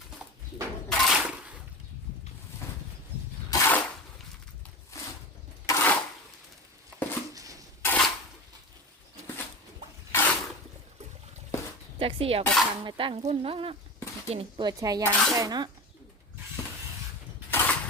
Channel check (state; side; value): normal; both; correlation 0.28